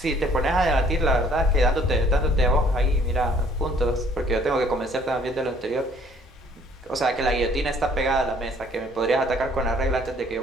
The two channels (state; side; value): normal; both; correlation 0.59